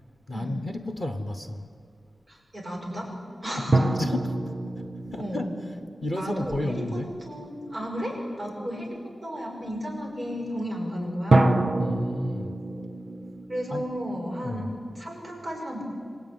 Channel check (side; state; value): both; normal; correlation 0.93